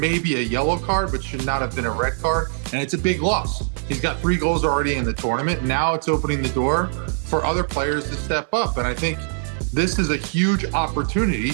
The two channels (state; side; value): silent; left; 64 dB below the other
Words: a yellow card, but should not have been a red card, and it's a big loss. He's got 3 goals already in the tournament. Now it's opening the door for other players to step up, and I think this is a huge opportunity